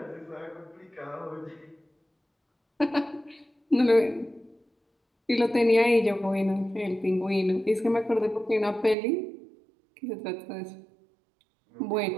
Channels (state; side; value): drops out; left; at 9.0 s